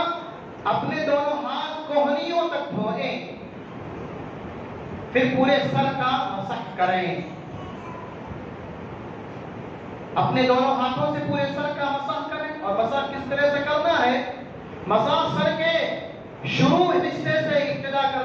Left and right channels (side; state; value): both; identical; correlation 1.00